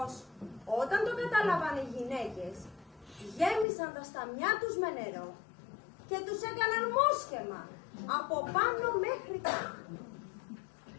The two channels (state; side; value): drops out; right; at 3.7 s